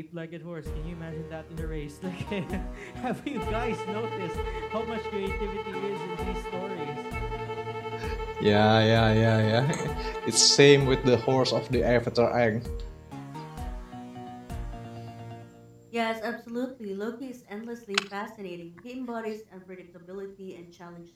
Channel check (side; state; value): both; identical; correlation 1.00